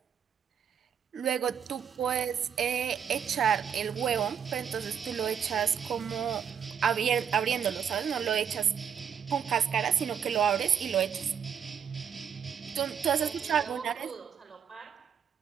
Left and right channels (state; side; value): quieter; left; 7.8 dB